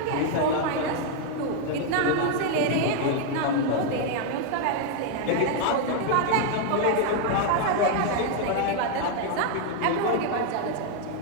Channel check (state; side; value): different; both; correlation 0.01